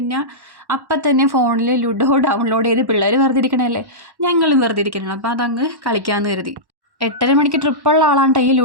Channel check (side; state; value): left; late; 1.1 ms